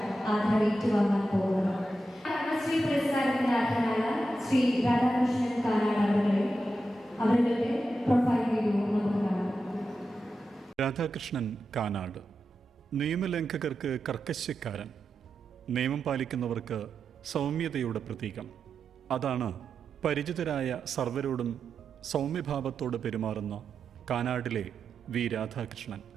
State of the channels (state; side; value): normal; both; correlation 0.89